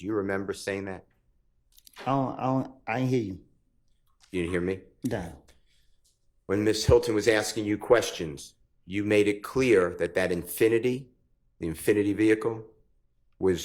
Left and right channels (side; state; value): both; identical; correlation 1.00